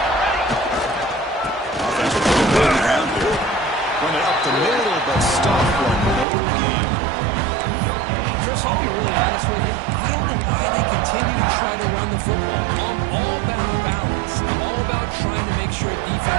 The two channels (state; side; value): drops out; left; at 6.2 s